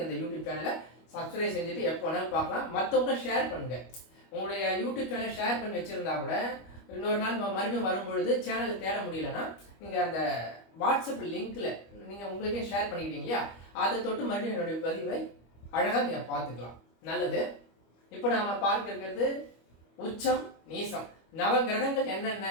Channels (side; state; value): right; late; 25 ms